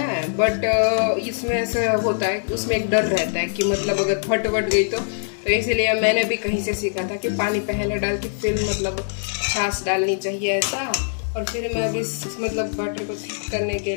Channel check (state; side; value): silent; right; digital silence